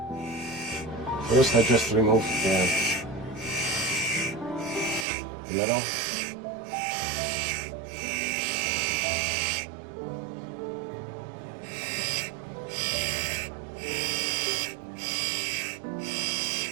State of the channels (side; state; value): left; drops out; at 5.1 s